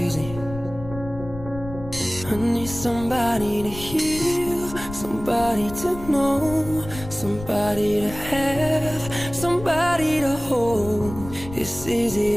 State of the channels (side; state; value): left; noise; rumble, 12 dB below the sound